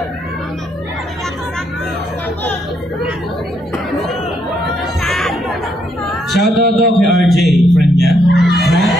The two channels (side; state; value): both; normal; correlation 0.74